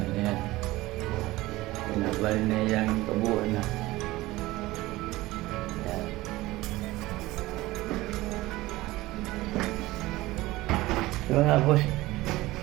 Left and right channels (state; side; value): quieter; left; 18.6 dB